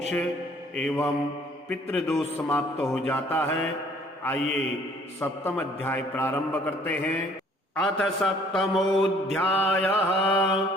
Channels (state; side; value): normal; both; correlation 0.58